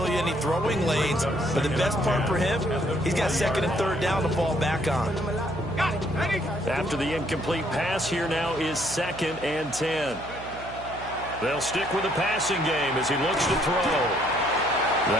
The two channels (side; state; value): right; noise; hum, 14 dB below the sound